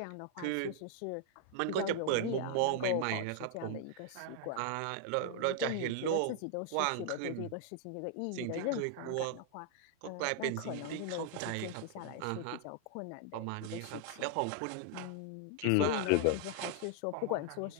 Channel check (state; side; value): different; both; correlation 0.00